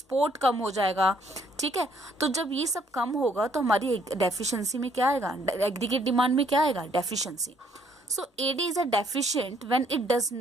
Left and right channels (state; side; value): normal; both; correlation 0.66